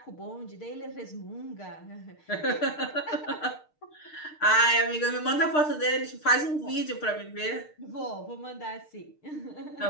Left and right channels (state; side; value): late; right; 6.6 ms